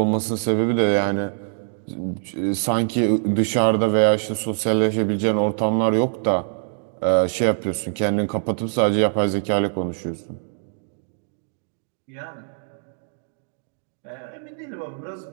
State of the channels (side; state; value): left; silent; digital silence